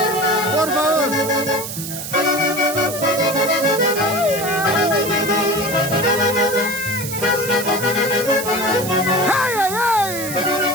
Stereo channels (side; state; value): right; noise; hiss, 7 dB below the sound